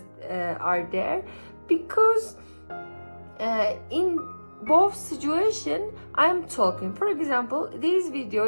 are there, because in both situation I'm talking. For example, this video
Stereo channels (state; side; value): inverted; both; correlation -1.00